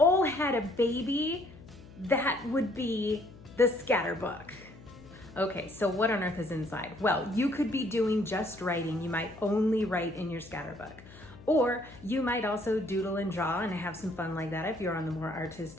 had a baby, that would be the scatterbook. Okay, so what on earth is inside? Well, you could be doing just writing. You might only write in your scatterbook. Or you might also doodle and draw and have some fun like that if you're on the more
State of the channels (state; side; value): noise; left; hum, 19 dB below the sound